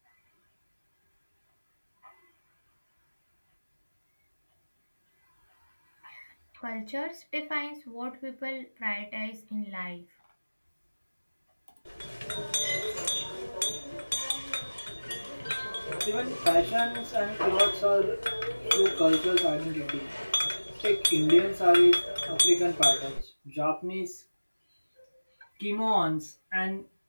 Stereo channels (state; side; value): inverted; both; correlation -1.00